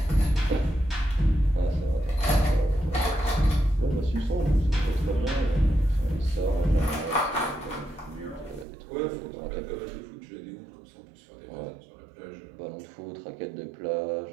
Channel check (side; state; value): left; drops out; at 8.7 s